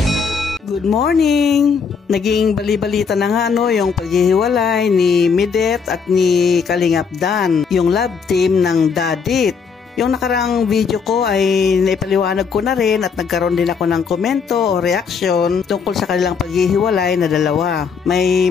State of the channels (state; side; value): quieter; right; 5.9 dB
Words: Good morning! Naging bali-balita na nga yung paghihiwalay ni Midet at ni Kalingap Dan, yung love team ng Dadit. Yung nakarang video ko ay naipaliwanag ko na rin at nagkaroon din ako ng komento o reaction tungkol sa kanilang paghihiwalay na dalawa. May